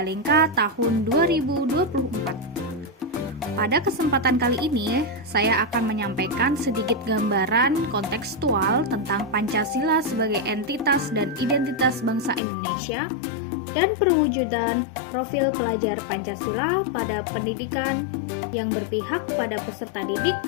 tahun 2024. Pada kesempatan kali ini, saya akan menyampaikan sedikit gambaran kontekstual tentang Pancasila sebagai entitas dan identitas bangsa Indonesia dan perwujudan profil pelajar Pancasila pada pendidikan yang berpihak pada peserta didik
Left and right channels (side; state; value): right; drops out; at 12.4 s